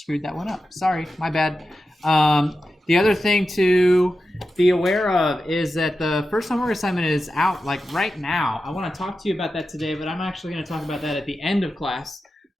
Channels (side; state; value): both; normal; correlation 0.91